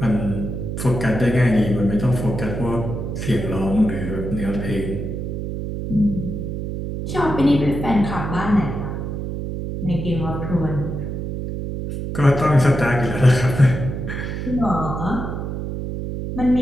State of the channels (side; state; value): right; noise; hum, 5 dB below the sound